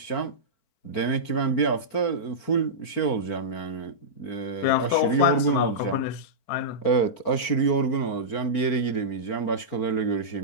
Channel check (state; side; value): late; right; 4.4 ms